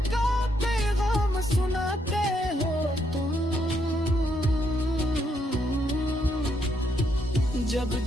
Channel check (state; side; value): normal; both; correlation 0.76